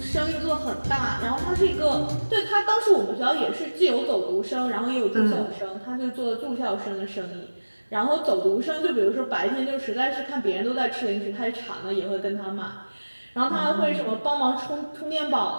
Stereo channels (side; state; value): both; inverted; correlation -1.00